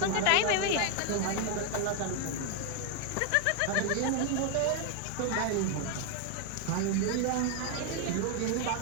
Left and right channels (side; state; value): both; different; correlation 0.01